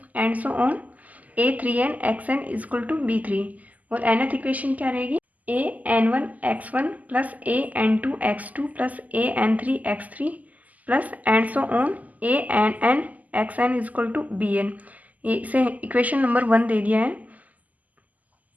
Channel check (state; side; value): late; left; 0.078 ms